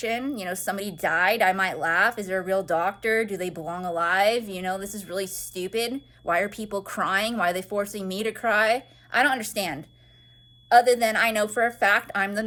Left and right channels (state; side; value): identical; both; correlation 1.00